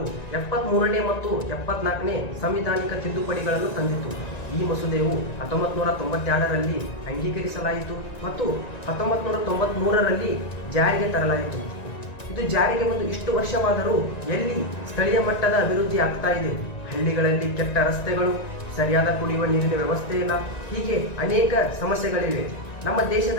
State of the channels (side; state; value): right; late; 1.9 ms